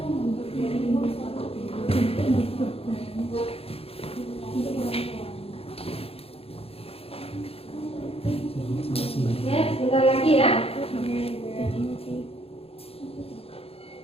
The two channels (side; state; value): right; late; 0.28 ms